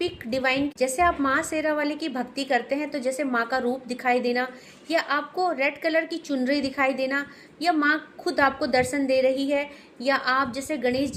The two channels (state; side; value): identical; both; correlation 1.00